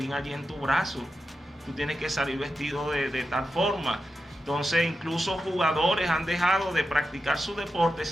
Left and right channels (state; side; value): normal; both; correlation 0.90